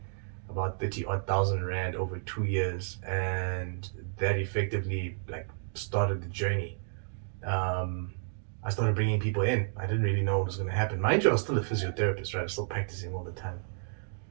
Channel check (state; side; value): silent; left; digital silence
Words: about 30 odd thousand rand over 2 years, and that effectively like started the journey. I started bringing people in. I didn't really know what was going to happen. Mind you, I was still a physiotherapist, right? I was still practicing all the time.